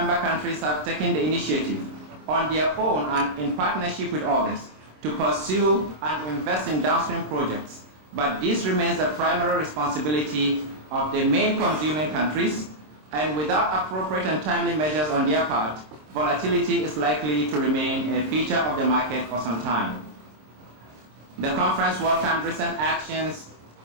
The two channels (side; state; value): left; late; 26 ms